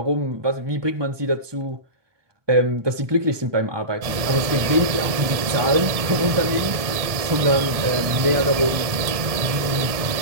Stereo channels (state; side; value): late; left; 1.6 ms